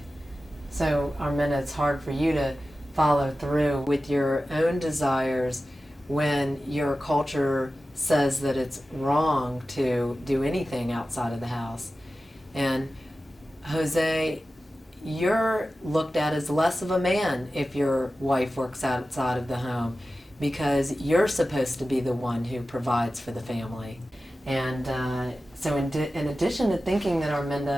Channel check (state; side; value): normal; both; correlation 0.94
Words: So, Armenda, it's hard for you to follow through with your own desires when your culture says that it's wrong to do anything outside of the house. And Jose, you're looked at as less of a man if your wife works outside of the home because you're supposed to be the one who provides for the family. And so in addition to thinking that